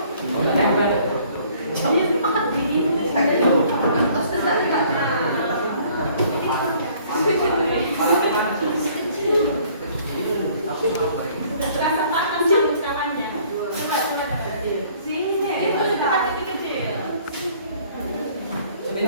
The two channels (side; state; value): both; inverted; correlation -0.58